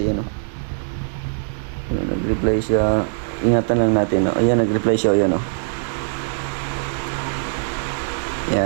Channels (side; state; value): left; silent; 65 dB below the other